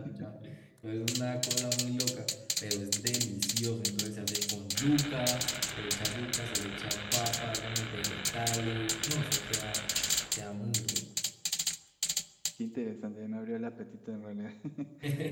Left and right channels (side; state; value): both; identical; correlation 1.00